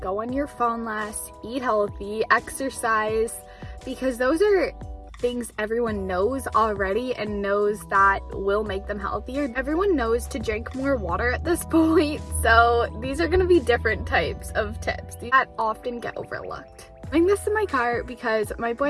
go on your phone less, eat healthy, exercise, because those are things everyone knows already and knows that will make them healthier. Everyone knows to drink more water at this point, so these are going to be different types of tips that often get overlooked. I'm doing this in my car because my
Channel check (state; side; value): identical; both; correlation 1.00